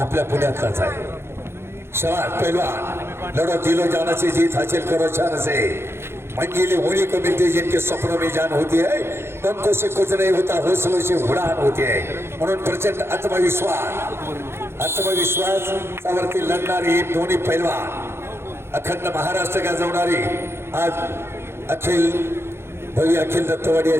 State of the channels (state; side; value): late; left; 0.12 ms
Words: आपल्या पुण्यातलाच आहे। शाबाश पहलवान लड़ो दिलो जाना से जीत हासिल करो शान से। मंजिलें होने को मिलती जिनके सपनों में जान होती है, पंखों से कुछ नहीं होता हौसलों से उड़ान होती है। म्हणून प्रचंड आत्मविश्वास सावरती लढणारी दोन्ही पहलवान अखंड महाराष्ट्र गाजवणारी आज अखिल दत्तवाडिया